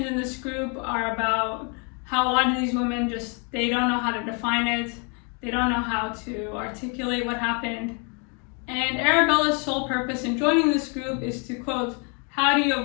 in this group are about how a lot of these women they don't know how to define it. They don't know how to articulate what happened. And Arabella's sole purpose in joining this group is to, quote, how do you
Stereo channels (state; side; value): quieter; right; 35.2 dB